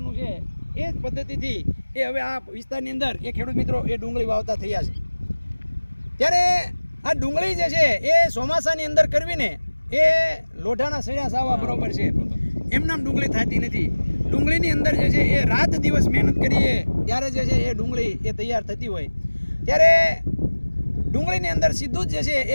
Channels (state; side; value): inverted; both; correlation -1.00